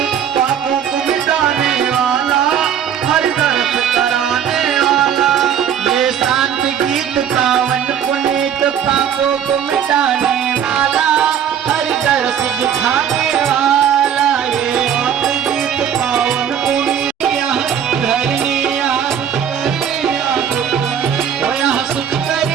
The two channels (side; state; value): left; quieter; 8.8 dB